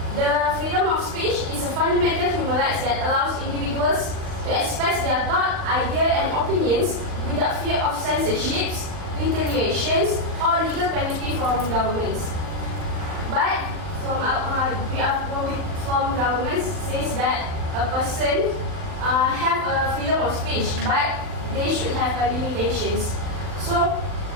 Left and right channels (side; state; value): left; late; 39 ms